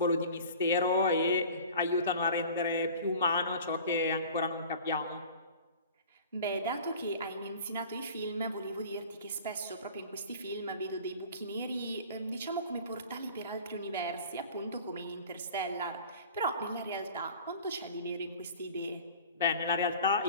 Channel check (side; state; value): both; inverted; correlation -0.43